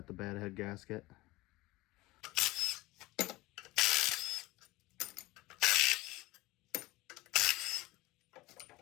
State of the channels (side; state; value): right; quieter; 20.2 dB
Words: the bad head gasket.